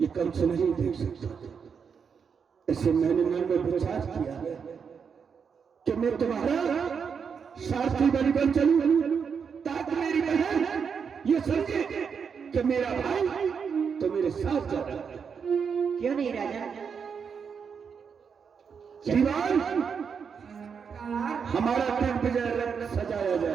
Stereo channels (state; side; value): quieter; left; 6.4 dB